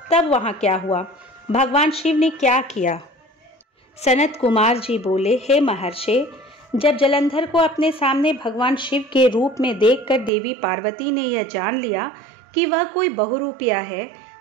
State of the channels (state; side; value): drops out; left; at 10.3 s